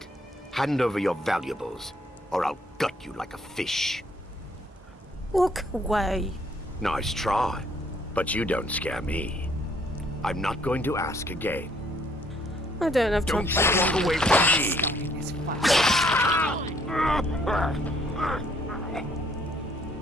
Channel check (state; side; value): normal; both; correlation 0.65